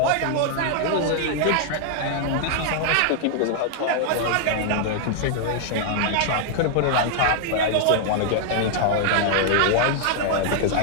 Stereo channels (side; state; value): both; different; correlation 0.00